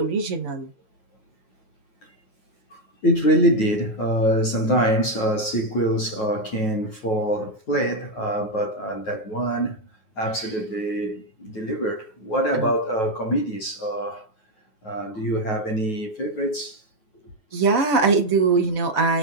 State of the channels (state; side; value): late; right; 9.3 ms